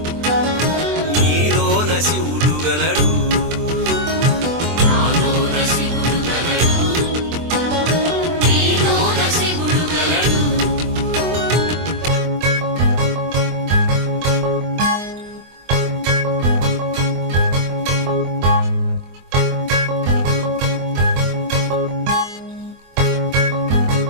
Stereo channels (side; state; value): left; late; 24 ms